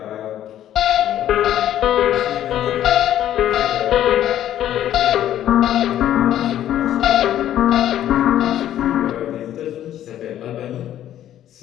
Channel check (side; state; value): right; quieter; 11.7 dB